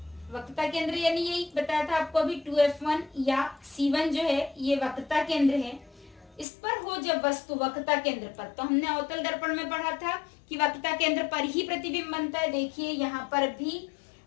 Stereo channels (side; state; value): right; drops out; at 6.5 s